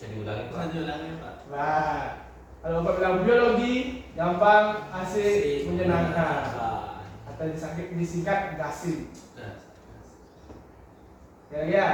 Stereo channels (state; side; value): identical; both; correlation 1.00